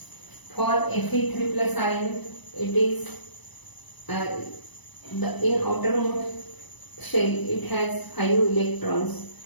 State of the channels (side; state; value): right; late; 1.0 ms